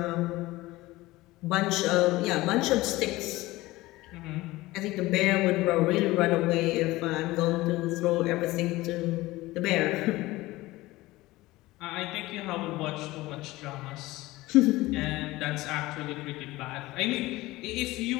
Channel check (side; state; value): right; quieter; 19.0 dB